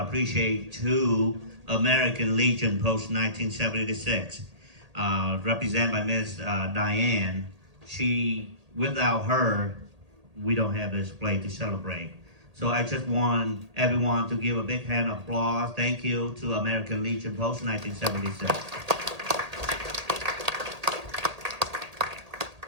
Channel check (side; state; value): left; late; 1.8 ms